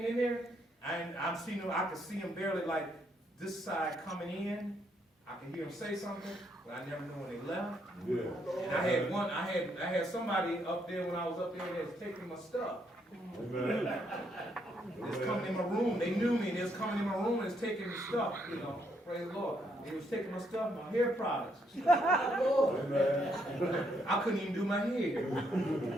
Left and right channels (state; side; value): normal; both; correlation 0.74